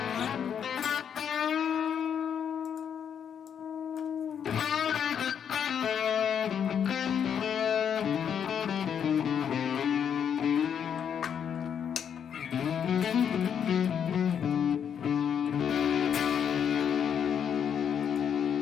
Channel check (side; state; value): right; quieter; 8.1 dB